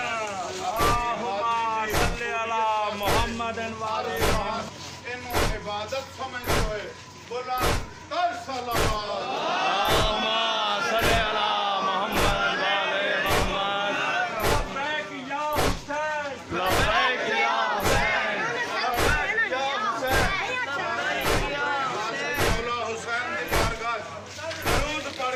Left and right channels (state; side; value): identical; both; correlation 1.00